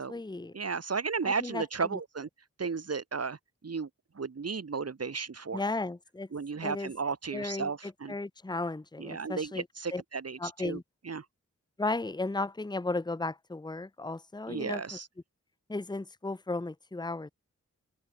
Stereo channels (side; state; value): both; normal; correlation 0.14